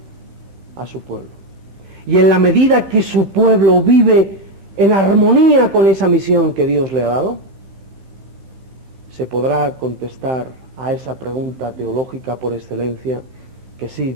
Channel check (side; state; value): left; late; 15 ms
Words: a su pueblo. Y en la medida que su pueblo vive en armonía con esa misión que Dios le ha dado, se podrá contestar a esa pregunta teológica por excelencia, que sí,